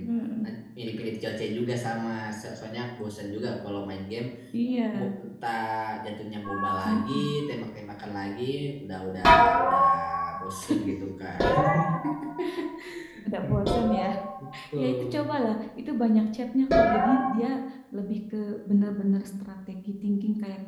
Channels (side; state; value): both; identical; correlation 1.00